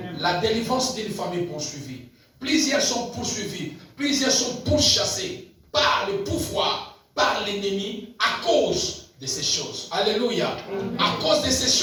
La délivrance d'une famille poursuivie. Plusieurs sont poursuivis, plusieurs sont pourchassés par le pouvoir, par l'ennemi, à cause de ces choses. Alléluia. À cause de ces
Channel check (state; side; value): identical; both; correlation 1.00